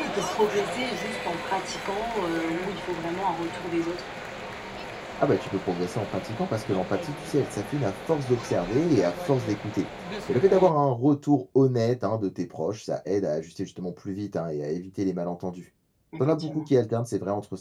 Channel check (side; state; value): both; identical; correlation 1.00